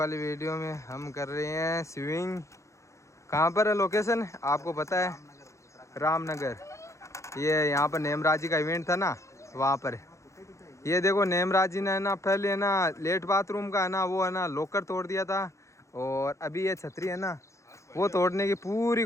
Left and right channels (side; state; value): right; late; 0.14 ms